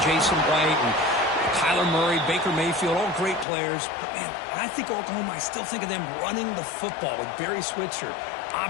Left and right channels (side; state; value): right; drops out; at 3.5 s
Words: Jason White and Kyler Murray, Baker Mayfield, all great players. But, man, when I think Oklahoma, I still think of them running the football with Barry Switzer,